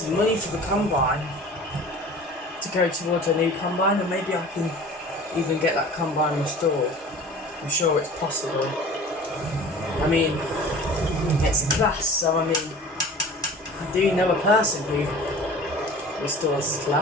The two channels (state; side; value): normal; both; correlation 0.42